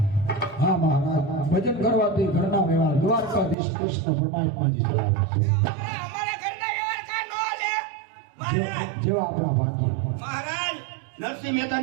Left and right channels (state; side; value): drops out; left; at 3.6 s